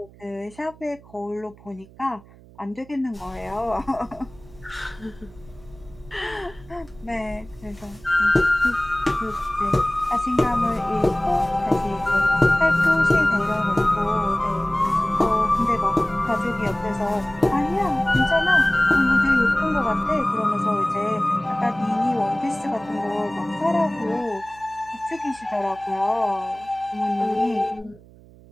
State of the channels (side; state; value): right; noise; hum, 23 dB below the sound